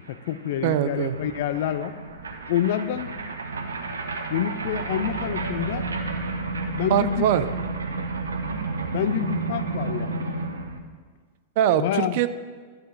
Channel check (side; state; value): both; inverted; correlation -0.31